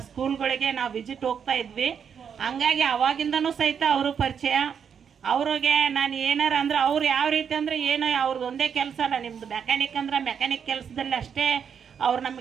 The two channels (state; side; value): quieter; left; 7.4 dB